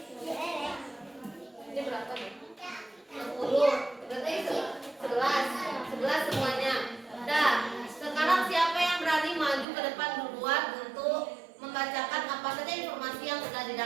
Ini berapa nih? 60. Berarti 11 semuanya. Dah, sekarang siapa yang berani maju ke depan duluan untuk membacakan apa saja informasi yang sudah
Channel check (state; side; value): drops out; left; at 9.7 s